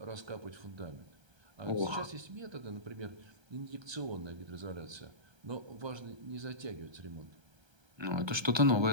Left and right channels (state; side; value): late; left; 1.3 ms